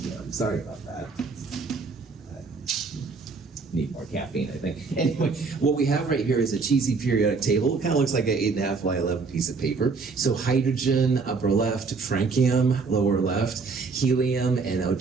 sorry about that. Need more caffeine, I think. Anyway, what we have right here is a cheesy periodic table. It kind of looks like an 8.5 by 11 piece of paper. So hydrogen, upper left, francium, lower left, helium, and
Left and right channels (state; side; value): quieter; left; 4.6 dB